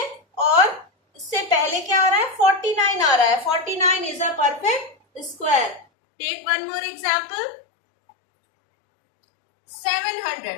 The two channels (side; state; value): right; drops out; at 5.9 s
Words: और इससे पहले क्या आ रहा है? 49 आ रहा है। 49 is a perfect square. Take one more example,